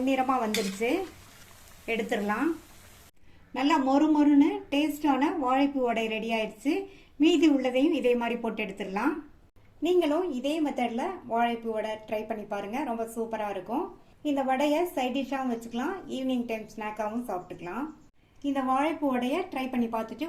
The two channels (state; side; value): identical; both; correlation 1.00